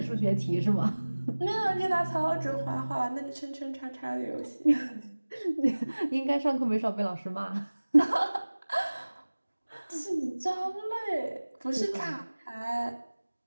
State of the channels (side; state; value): both; inverted; correlation -1.00